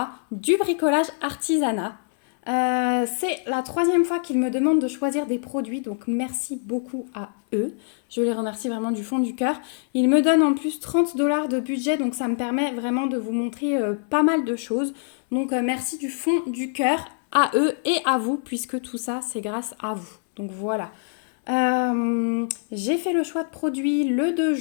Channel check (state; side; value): silent; right; 62 dB below the other